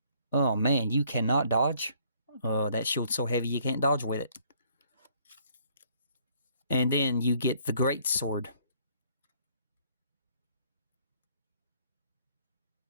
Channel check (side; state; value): both; inverted; correlation -0.63